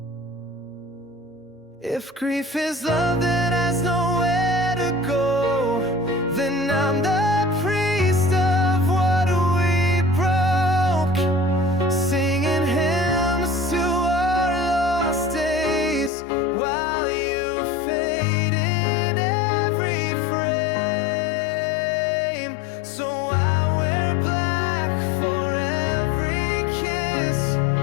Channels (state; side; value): drops out; right; at 16.1 s